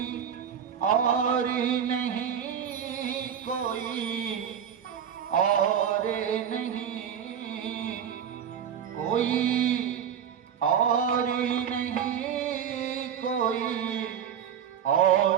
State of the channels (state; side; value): quieter; left; 8.4 dB